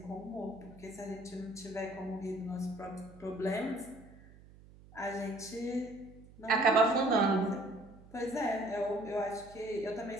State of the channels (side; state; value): right; noise; hum, 21 dB below the sound